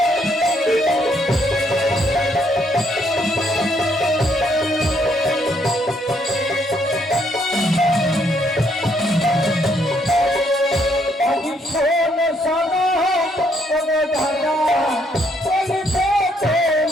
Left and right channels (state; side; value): normal; both; correlation 0.71